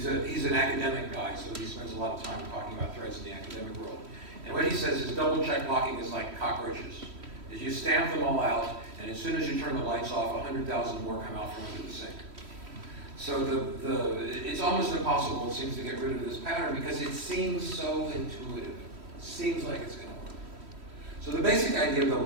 an academic guy, so he spends a lot of time talking about threads in the academic world. And what he says is double-check blocking is like cockroaches. Is you stamp them all out, and as soon as you turn the lights off, 100,000 more come out from under the sink. So it's almost impossible, it seems, to get rid of this pattern because it seems so intuitive. It seems like it's going to work. So the basic idea of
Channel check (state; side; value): late; left; 3.1 ms